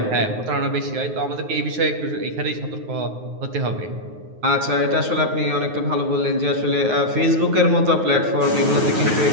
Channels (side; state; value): left; late; 9.5 ms